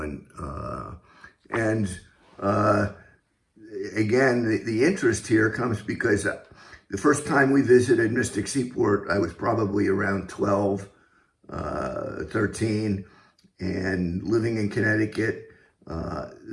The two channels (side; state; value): both; identical; correlation 1.00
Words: again, the interest here comes because the first time we visited Mystic Seaport, I was probably around 12, 13, and living in Connecticut.